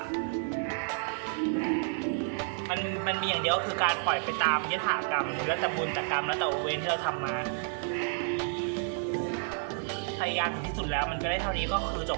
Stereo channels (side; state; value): left; silent; 57 dB below the other